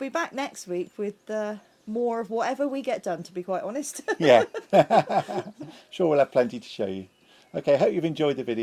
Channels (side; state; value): both; identical; correlation 1.00